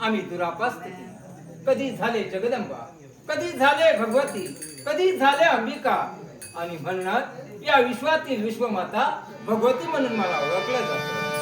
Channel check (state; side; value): identical; both; correlation 1.00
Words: दुरापास्त केली कधी झाले जगदंबा कधी झाले भगवती कधी झाले अंबिका आणि म्हणूनच या विश्वातील विश्वमाता भगवती म्हणून मला ओळखलं जातं